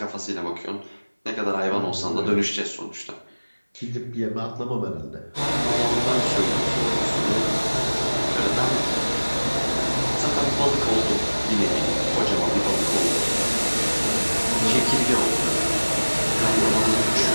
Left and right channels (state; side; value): inverted; both; correlation -1.00